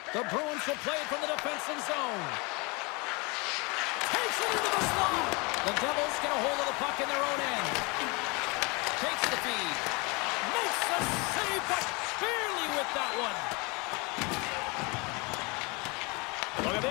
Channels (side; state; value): right; quieter; 28.2 dB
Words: The Bruins will play it from the defensive zone. Takes it into the slot. The Devils get a hold of the puck in their own end. Takes the feed. Makes the save, but barely with that one. Look at